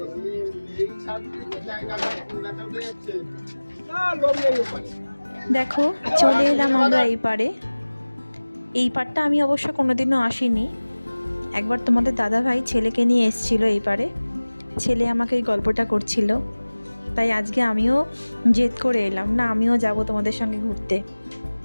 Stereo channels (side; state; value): both; inverted; correlation -1.00